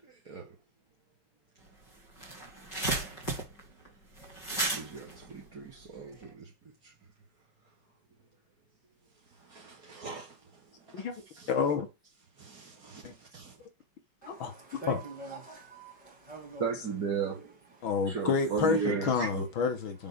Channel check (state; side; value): late; right; 5.3 ms